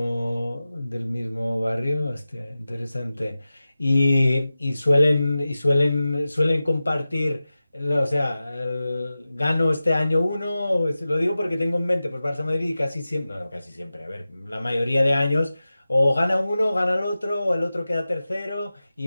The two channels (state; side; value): inverted; both; correlation -0.95